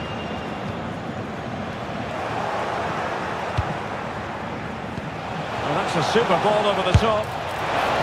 Well, that's a super ball over the top.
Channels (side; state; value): both; identical; correlation 1.00